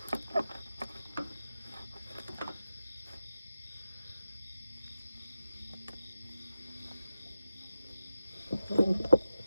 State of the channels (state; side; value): inverted; both; correlation -0.92